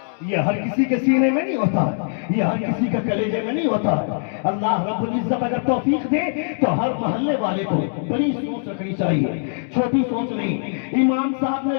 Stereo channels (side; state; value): right; silent; digital silence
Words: ये हर किसी के सीने में नहीं होता है, ये हर किसी के कलेजे में नहीं होता है। अल्लाह रब्बुल इज्जत अगर तौफीक दे तो हर मोहल्ले वाले को बड़ी सोच रखनी चाहिए, छोटी सोच नहीं। इमाम साहब ने